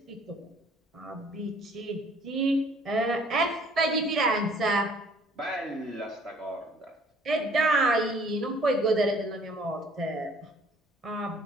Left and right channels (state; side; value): normal; both; correlation 0.57